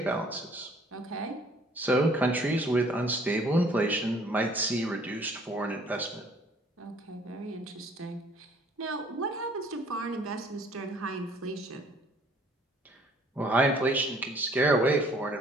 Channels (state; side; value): normal; both; correlation 0.57